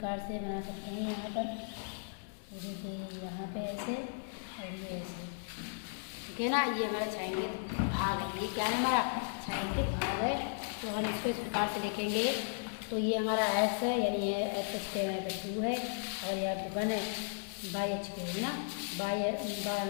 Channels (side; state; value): right; silent; digital silence